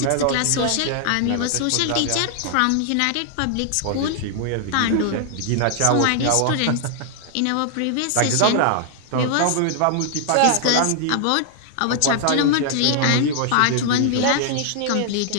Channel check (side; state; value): both; different; correlation -0.01